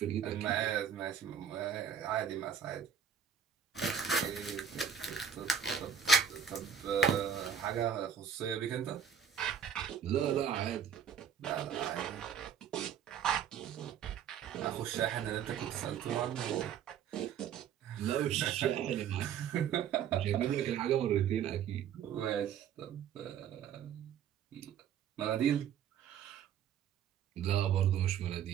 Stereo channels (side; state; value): left; quieter; 8.0 dB